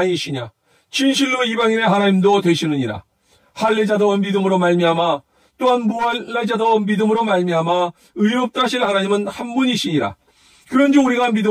진실로 이방인의 하나님도 되시느니라. 할례자도 믿음으로 말미암아 또한 무할례자도 믿음으로 말미암아 의롭다 하실 하나님은 한 분이시니라. 그런즉 우리가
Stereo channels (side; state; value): both; identical; correlation 1.00